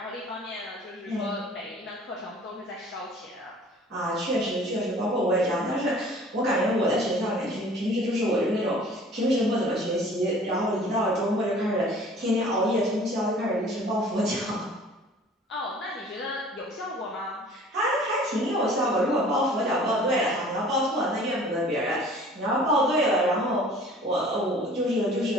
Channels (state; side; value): normal; both; correlation 0.49